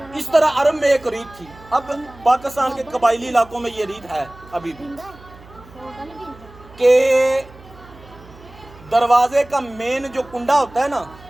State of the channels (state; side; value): noise; right; hum, 22 dB below the sound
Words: اس طرح عرب میں ایک ریت تھی اب پاکستان کے قبائلی علاقوں میں یہ ریت ہے ابھی بھی کہ دروازے کا مین جو کنڈا ہوتا ہے نا